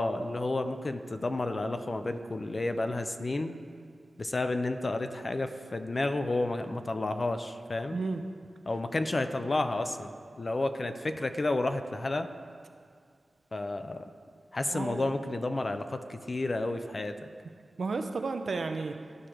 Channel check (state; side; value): normal; both; correlation 0.95